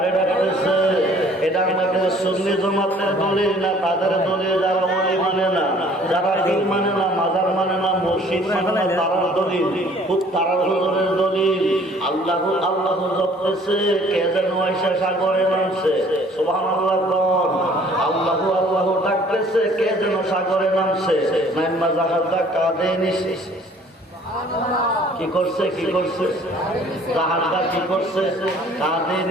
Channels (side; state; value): both; normal; correlation 0.55